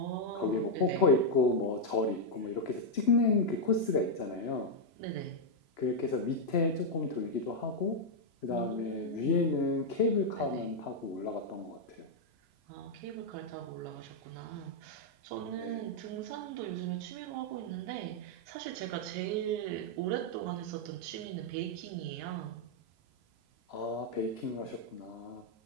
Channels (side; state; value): right; late; 3.0 ms